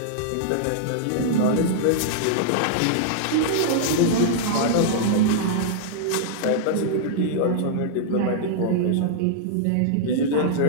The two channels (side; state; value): both; different; correlation -0.01